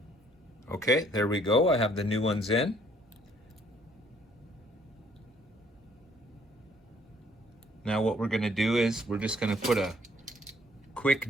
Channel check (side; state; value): both; normal; correlation 0.63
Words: Okay, there we go. I have the new ones in. Now what we're going to do is we're just going to put a